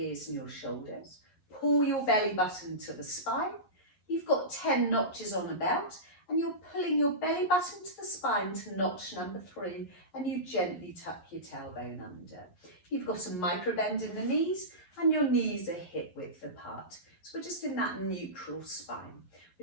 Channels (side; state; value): right; late; 11 ms